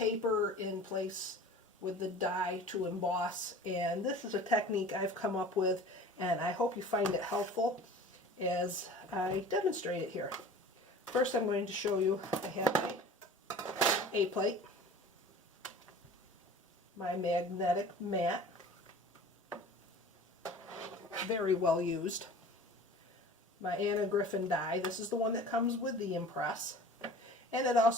in place with the die to emboss, and this is a technique I've come up with, and I hope you find it helpful as I demonstrate it here. First I'm going to show you, I have my A-plate, my magnetic mat, very well used, my Griffin die. This is the one that comes with the Empress, and it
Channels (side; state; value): both; normal; correlation 0.42